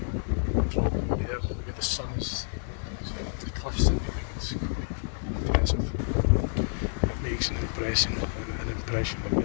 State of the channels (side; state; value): right; silent; digital silence